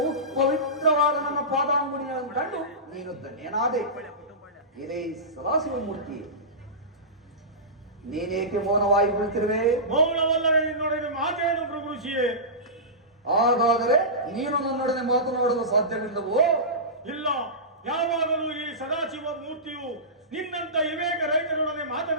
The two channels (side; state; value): both; normal; correlation -0.19